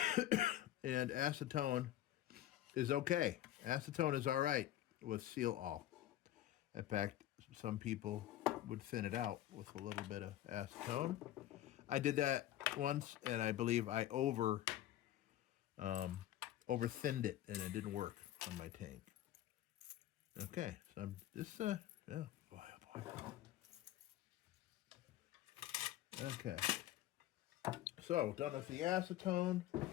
And acetone is okay. Acetone is all right with seal all. In fact, some people would thin it out with a little bit of acetone. I did that once, and I believe I over thinned it, and it didn't work on my tank. Okay, so I'm just yeah, boy, oh boy. Okay, so done with the acetone,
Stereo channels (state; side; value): quieter; right; 13.3 dB